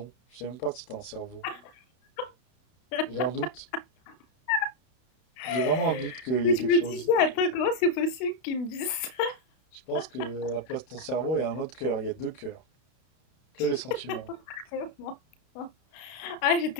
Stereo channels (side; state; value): right; late; 32 ms